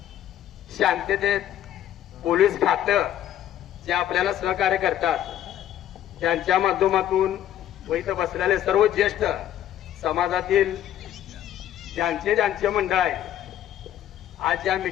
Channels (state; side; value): quieter; right; 11.5 dB